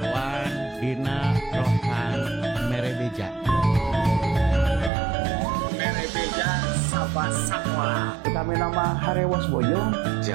dina Rohan Merebeja Sabah Sakola kami nama Harewas Boyong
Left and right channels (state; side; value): drops out; left; at 4.9 s